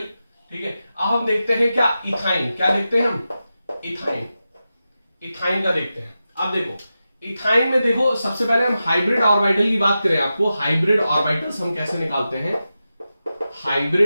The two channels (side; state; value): both; inverted; correlation -0.91